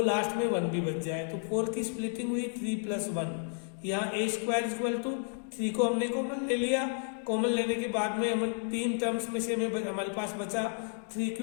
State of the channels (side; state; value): right; silent; 57 dB below the other